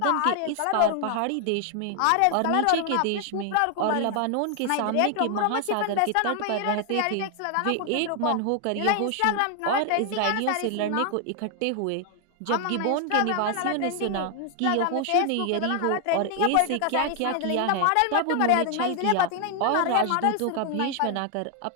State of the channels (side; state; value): both; different; correlation 0.00